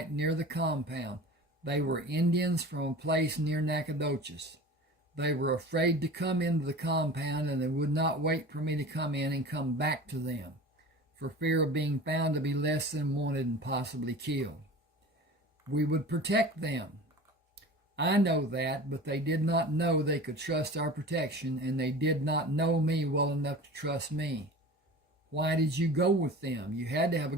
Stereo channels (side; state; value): both; normal; correlation 0.37